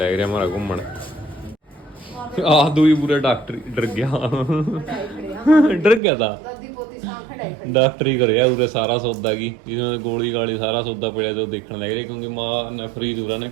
रहा हमारा घूमन, आदू ही पूरा डॉक्टर डर गया डर गया था डॉक्टर ही कर पूरे सारा सौदा की इसमें गोली गाली सारा सौदा पड़ा जो देखने लग रहा क्योंकि माँ ने फ्रीज उरा ने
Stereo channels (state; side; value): drops out; left; at 6.0 s